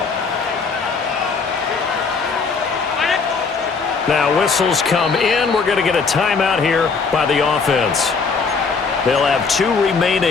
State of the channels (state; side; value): quieter; right; 4.9 dB